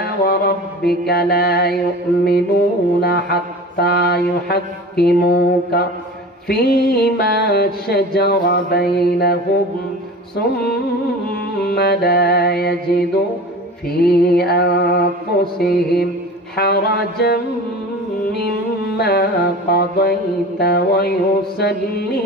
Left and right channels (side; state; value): both; normal; correlation 0.36